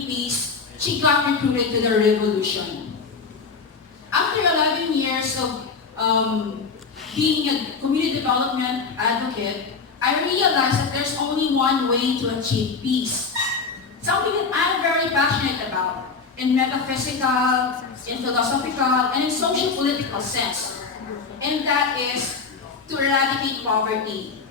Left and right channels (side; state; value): right; quieter; 5.0 dB